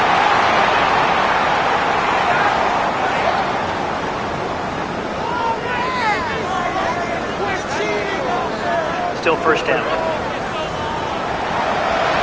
Still first down.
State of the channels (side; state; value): both; identical; correlation 1.00